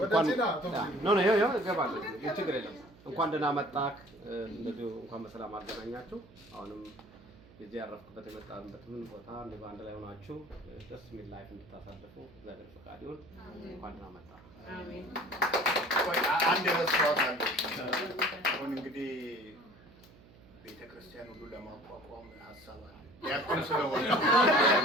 ችግር የለም። እንኳን ደህና መጣህ። እንደዚሁ እንኳን በሰላም አገናኛችሁ። አሁንም የዚህ ያረፍኩበት የመጣንበትን ቦታ እንደው አንድ ላይ ሆናችሁ ደስ የሚል ላይፍ እንድታሳልፉ እግዚአብሔር ፈቃድ ይሁን። እንኳን ደህና መጣህ። አሜን። አንድ ረስቷት አለ። አሁን እንግዲህ ቤተክርስቲያን ሁሉ ለማቋቋም ሀሳብ አለ። ዲያቆን ስለሆነ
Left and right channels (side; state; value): right; noise; hum, 23 dB below the sound